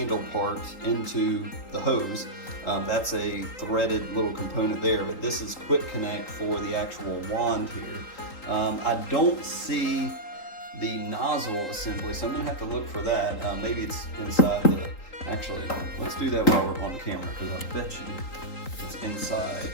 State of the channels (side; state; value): right; late; 3.8 ms